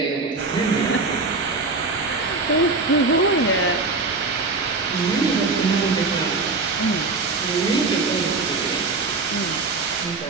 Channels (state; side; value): quieter; left; 3.8 dB